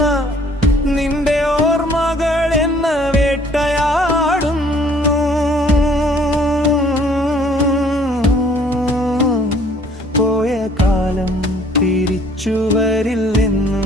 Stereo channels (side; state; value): both; normal; correlation 0.59